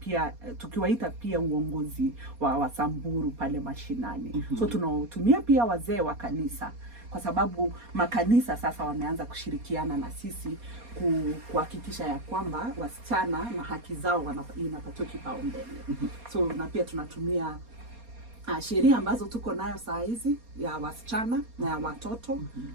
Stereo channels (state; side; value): late; left; 4.2 ms